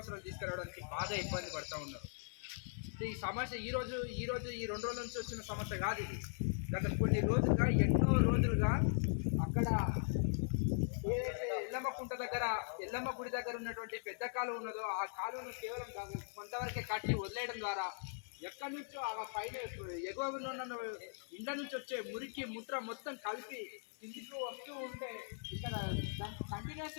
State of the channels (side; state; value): right; silent; 51 dB below the other